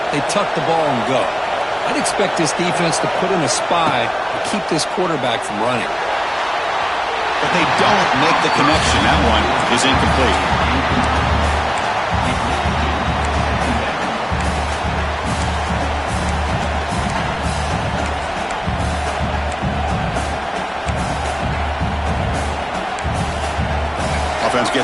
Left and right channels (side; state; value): both; identical; correlation 1.00